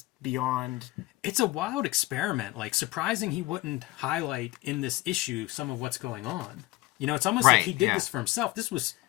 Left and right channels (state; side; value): quieter; right; 19.7 dB